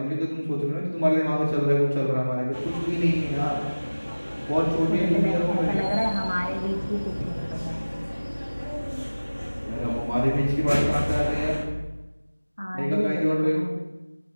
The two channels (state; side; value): inverted; both; correlation -1.00